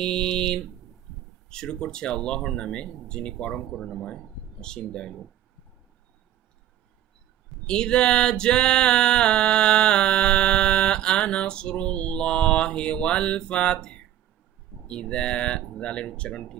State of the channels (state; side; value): quieter; left; 12.0 dB